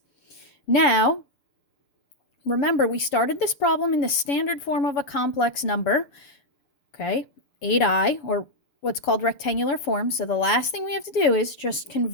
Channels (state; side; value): late; right; 6.8 ms